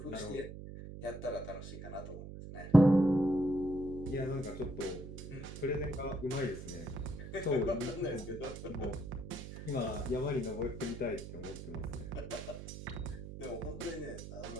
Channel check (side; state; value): right; noise; hum, 10 dB below the sound